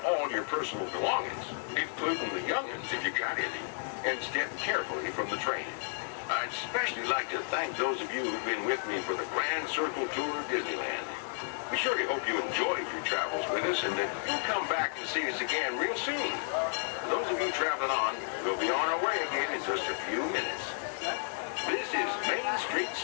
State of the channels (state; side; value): silent; right; 56 dB below the other